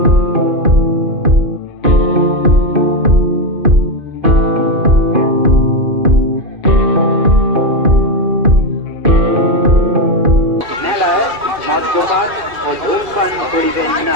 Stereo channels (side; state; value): left; late; 2.5 ms